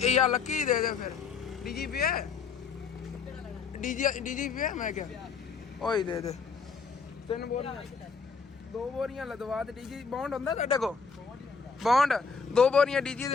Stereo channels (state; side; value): quieter; right; 5.4 dB